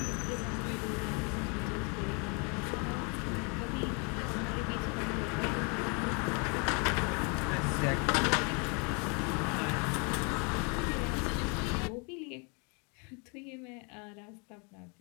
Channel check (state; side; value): quieter; right; 34.0 dB